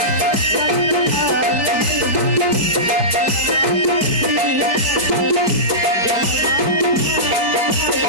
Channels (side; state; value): left; late; 4.6 ms